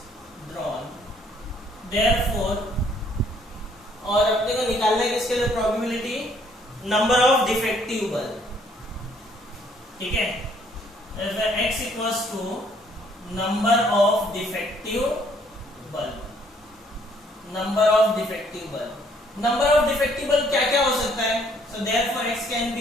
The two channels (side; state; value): both; normal; correlation 0.64